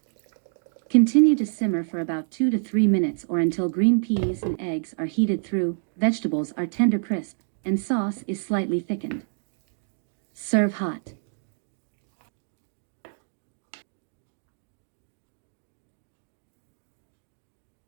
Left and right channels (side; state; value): left; silent; digital silence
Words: Continue to simmer for about 2 to 3 minutes or until green peas and eggs are heated through, vegetables are tender crisp, and sauce is slightly thickened. Serve hot.